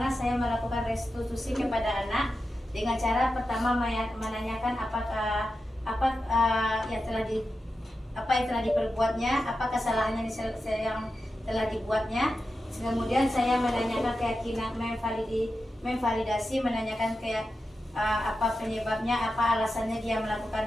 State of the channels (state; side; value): normal; both; correlation 0.90